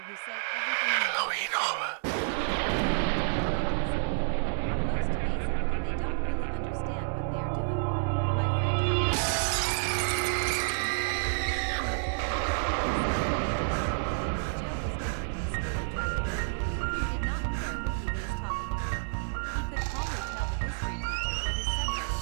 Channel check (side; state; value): left; silent; digital silence